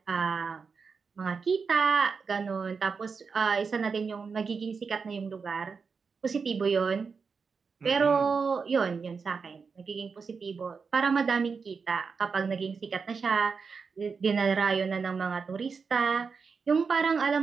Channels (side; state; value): left; quieter; 5.3 dB